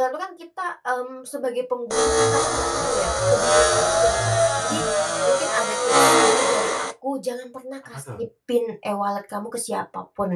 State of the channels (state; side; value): identical; both; correlation 1.00